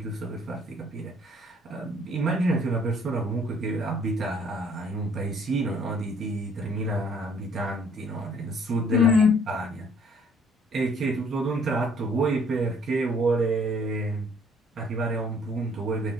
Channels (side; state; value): both; normal; correlation 0.60